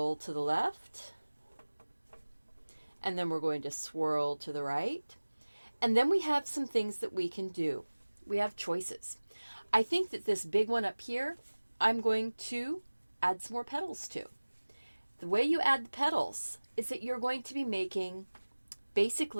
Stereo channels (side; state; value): both; inverted; correlation -1.00